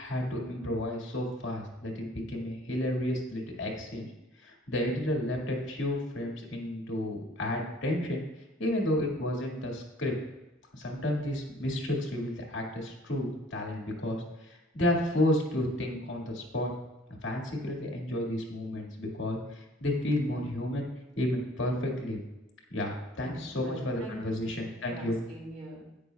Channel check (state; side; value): normal; both; correlation 0.55